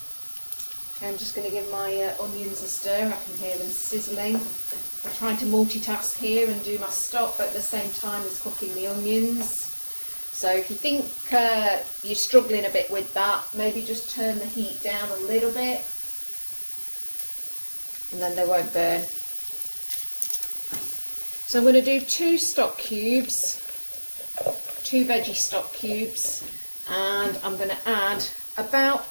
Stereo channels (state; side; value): inverted; both; correlation -1.00